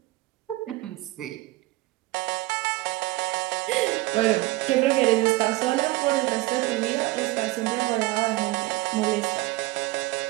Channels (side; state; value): left; quieter; 20.0 dB